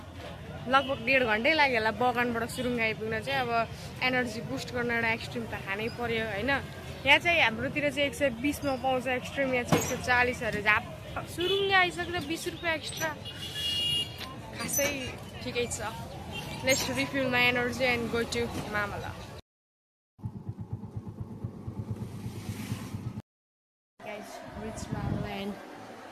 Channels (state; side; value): identical; both; correlation 1.00